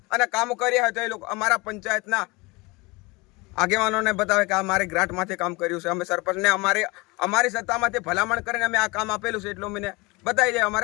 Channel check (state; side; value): quieter; right; 24.8 dB